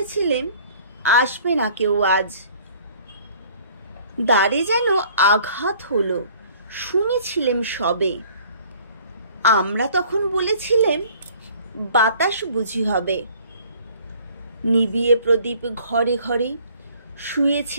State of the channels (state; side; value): inverted; both; correlation -0.54